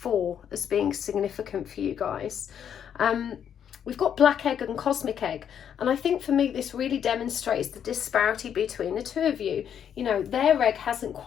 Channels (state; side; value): quieter; right; 8.7 dB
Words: as being significant for you guys. We've got Black Egg and Cosmic Egg. And I think for me, this really demonstrates the disparity between the two of you. You know, their egg hasn't